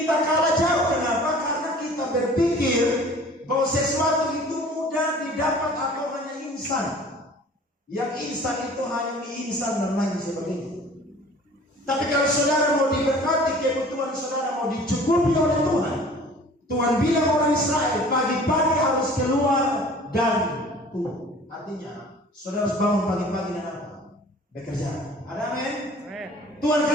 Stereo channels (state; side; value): normal; both; correlation 0.48